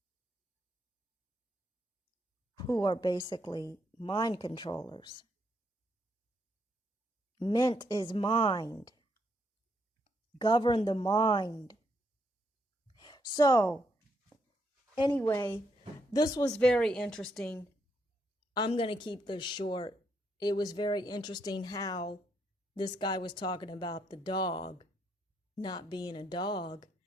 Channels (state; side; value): normal; both; correlation 0.76